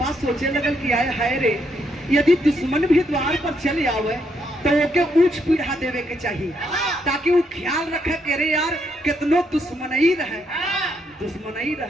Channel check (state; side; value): normal; both; correlation 0.76